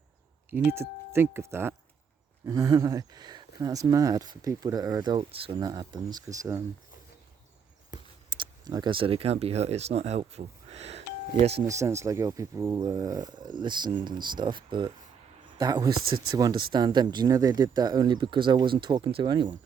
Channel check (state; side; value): quieter; left; 6.8 dB